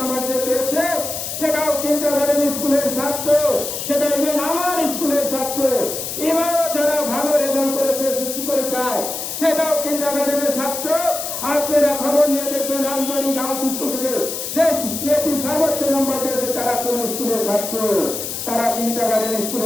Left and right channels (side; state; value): left; noise; hiss, 5 dB below the sound